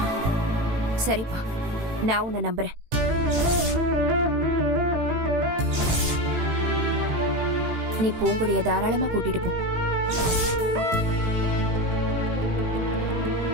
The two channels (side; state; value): left; late; 18 ms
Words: சரிப்பா, நான் உன்னை நம்புறேன். நீ பூங்குடிய தாராளமா கூட்டிட்டு போ.